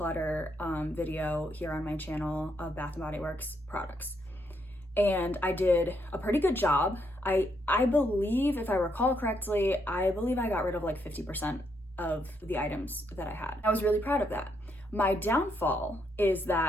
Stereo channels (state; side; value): normal; both; correlation 0.76